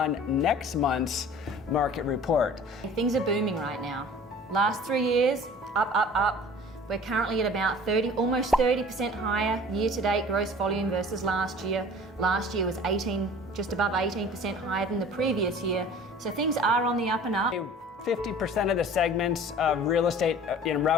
next month's market report. Things are booming right now. Last 3 years, up. We're currently at about almost 30% higher year-to-date gross volume versus last year. Last year was just above 18% higher than the previous year. So things are on the up and up. 50% of the segments of real estate in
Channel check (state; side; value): normal; both; correlation 0.45